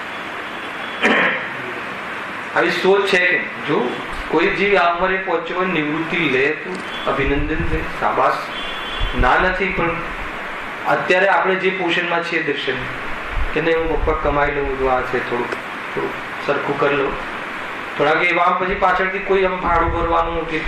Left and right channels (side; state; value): both; identical; correlation 1.00